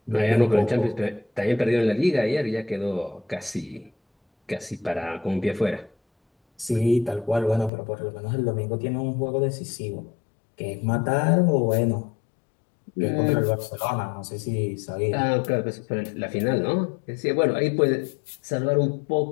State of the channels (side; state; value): right; drops out; at 7.7 s